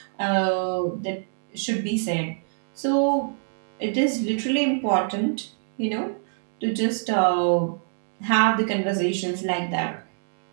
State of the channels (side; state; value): left; silent; digital silence